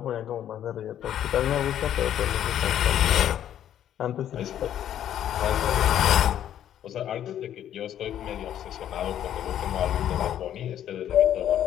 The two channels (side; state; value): right; quieter; 10.7 dB